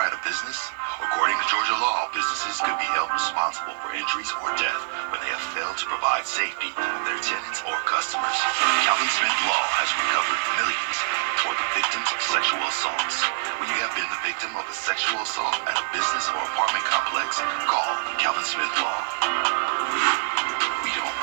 at a business? According to Georgia law, businesses could be held responsible for injuries or death when they have failed to provide safety to their tenants or customers. Calvin Smith Law has recovered millions for the victims of sexual assaults. When you have been the victim of a sexual assault at a business or apartment complex, call Calvin Smith Law. We don't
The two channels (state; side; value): silent; left; digital silence